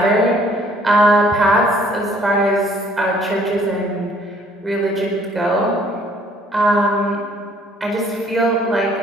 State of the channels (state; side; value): normal; both; correlation 0.60